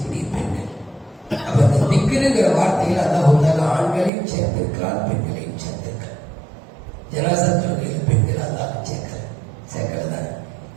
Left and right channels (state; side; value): drops out; left; at 4.1 s